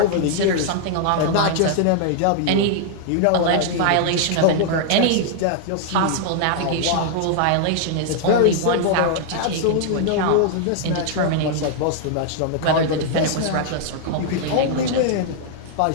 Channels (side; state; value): both; different; correlation -0.01